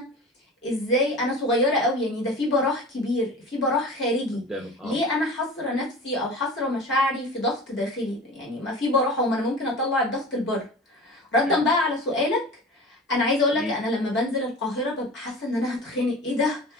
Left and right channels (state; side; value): normal; both; correlation 0.36